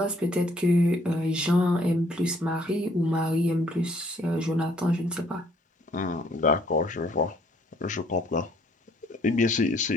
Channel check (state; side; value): normal; both; correlation 0.63